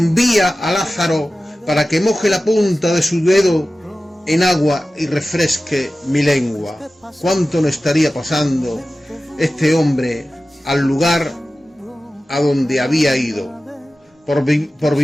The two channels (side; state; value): both; normal; correlation 0.95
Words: a Lázaro para que moje la punta de su dedo en agua y refresque mi lengua. ¿Cuánto no estaría pasando este hombre al lugar a donde había ido por